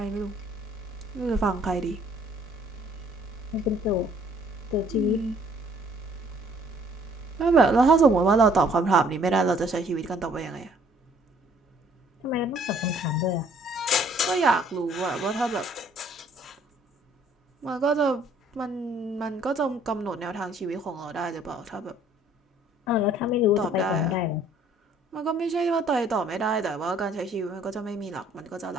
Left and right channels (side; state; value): both; normal; correlation 0.60